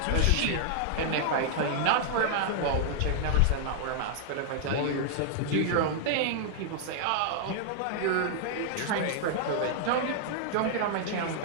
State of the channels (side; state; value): both; different; correlation -0.01